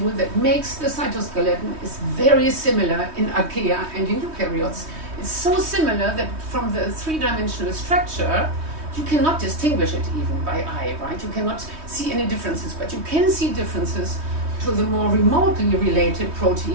that makes the cytoskeleton is very similar in archaea and in eukaryotes. It's so similar that from the three-dimensional structure, you cannot distinguish it even by eye, right? You cannot see any differences, but you can see differences to the more remotely related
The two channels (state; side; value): late; left; 3.2 ms